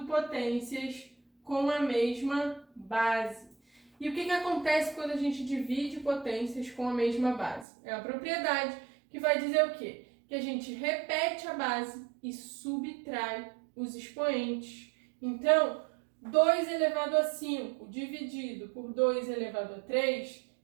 potências com a mesma base. E o que acontece quando a gente divide potências com a mesma base? É a propriedade que vai dizer o quê? Que a gente repete a base e subtrai os expoentes. Então, 2 elevado a 5 dividido por 2 elevado a 3,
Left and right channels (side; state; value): left; drops out; at 7.7 s